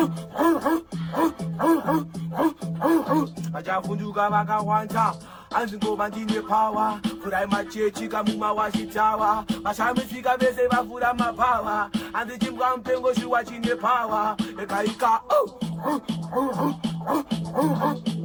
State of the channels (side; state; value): both; identical; correlation 1.00